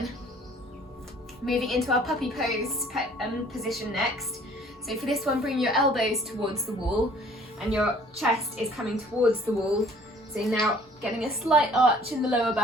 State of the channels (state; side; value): normal; both; correlation 0.55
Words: Moving into our puppy pose position next. So for this one, bring your elbows towards the wall and your chest is coming towards the wall. So now getting a slight arch in the lower